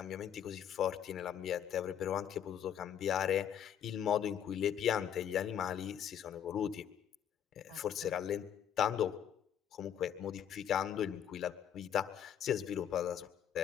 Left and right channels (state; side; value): quieter; right; 9.3 dB